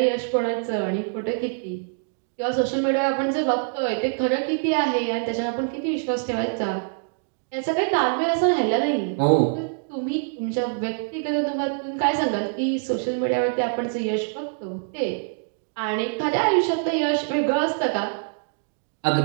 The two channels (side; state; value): left; silent; 62 dB below the other